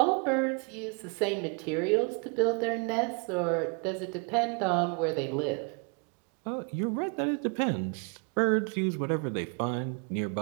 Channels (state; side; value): quieter; left; 35.0 dB